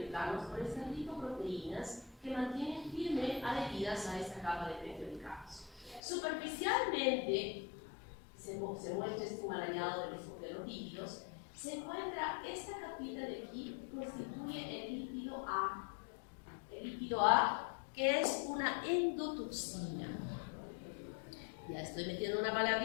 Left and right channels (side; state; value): right; drops out; at 6.0 s